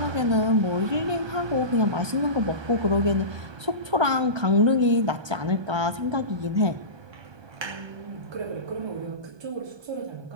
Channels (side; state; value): left; late; 1.2 ms